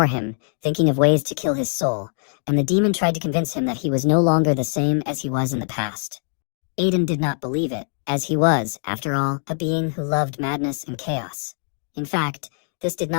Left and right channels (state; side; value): silent; right; digital silence